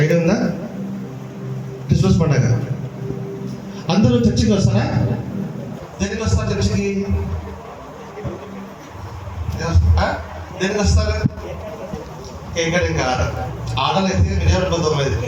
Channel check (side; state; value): both; identical; correlation 1.00